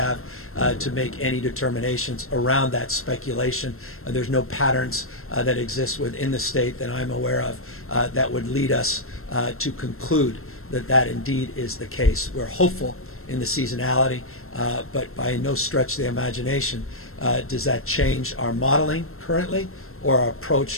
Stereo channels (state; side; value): late; right; 0.62 ms